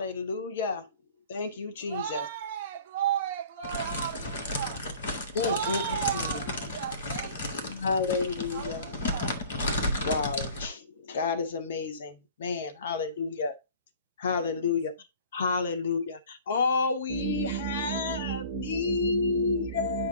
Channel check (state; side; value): inverted; both; correlation -0.47